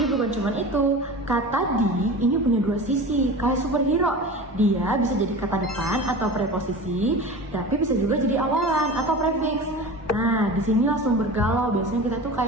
bukan cuma itu. Kata di ini punya dua sisi, kayak superhero. Dia bisa jadi kata depan atau preposisi, tapi bisa juga jadi awalan atau prefix. Nah, di sini langsung bergalau. Biasanya kita tuh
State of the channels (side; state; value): both; normal; correlation 0.33